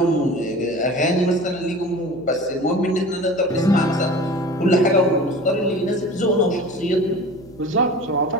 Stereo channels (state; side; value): noise; right; hum, 24 dB below the sound